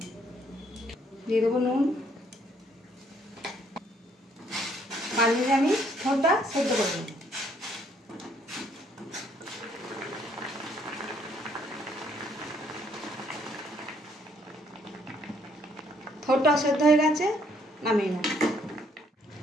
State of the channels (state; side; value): normal; both; correlation 0.67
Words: দিয়ে দেবো নুন। বানিয়ে আমি থোড়টা সেদ্ধ করে নেব। থোড়টা সেদ্ধ হয়ে গেছে, নামিয়ে নেব।